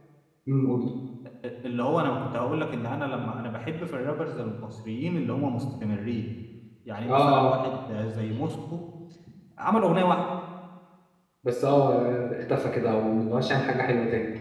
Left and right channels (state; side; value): identical; both; correlation 1.00